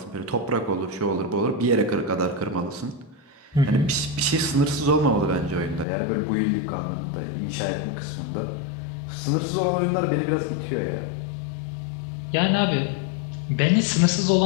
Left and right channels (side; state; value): right; drops out; at 5.9 s